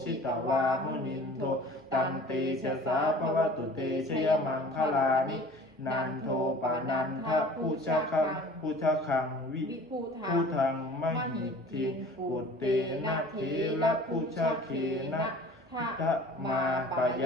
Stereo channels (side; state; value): both; normal; correlation 0.45